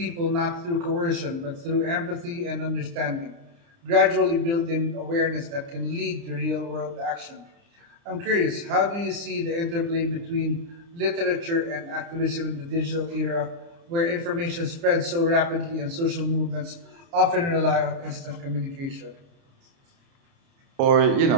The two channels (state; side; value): late; left; 29 ms